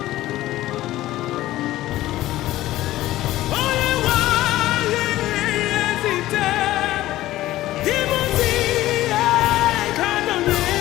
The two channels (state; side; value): quieter; right; 15.5 dB